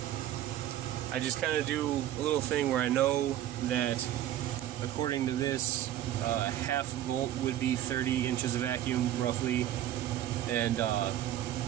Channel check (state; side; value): quieter; left; 12.4 dB